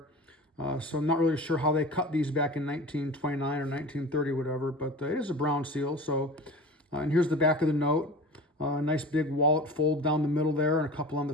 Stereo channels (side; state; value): both; normal; correlation 0.36